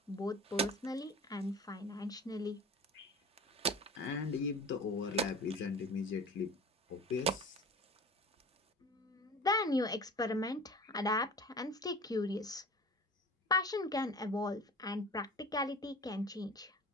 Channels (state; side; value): normal; both; correlation 0.39